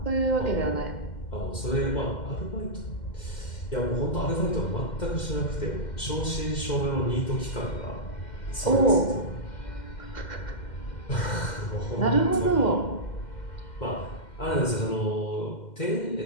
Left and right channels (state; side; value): late; right; 2.1 ms